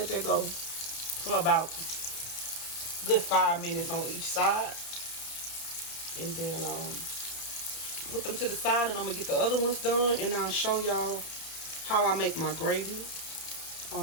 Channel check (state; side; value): late; right; 31 ms